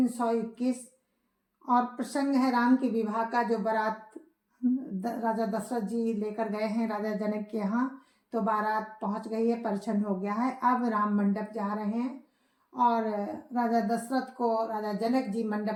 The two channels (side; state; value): both; identical; correlation 1.00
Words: और प्रसंग है राम के विवाह का, जो बारात राजा दशरथ जी लेकर गए हैं राजा जनक के यहाँ। तो बारात पहुंच गई है, परिछन हो गया है। अब राम मंडप जा रहे हैं और राजा दशरथ को राजा जनक जी